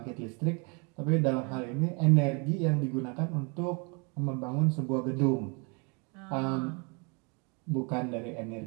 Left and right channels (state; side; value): quieter; left; 33.0 dB